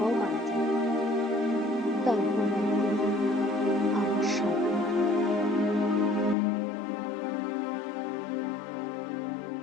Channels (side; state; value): right; drops out; at 6.4 s